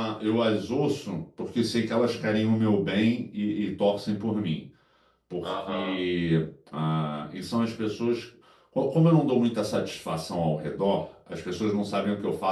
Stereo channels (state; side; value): identical; both; correlation 1.00